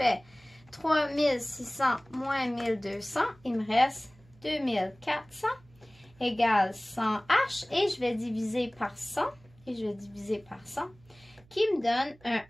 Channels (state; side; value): noise; right; hum, 28 dB below the sound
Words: 3600 moins 1200, il me reste 2400 égale 100H. Et je vais diviser par 100. Et je vais diviser par 100. Qui me donne un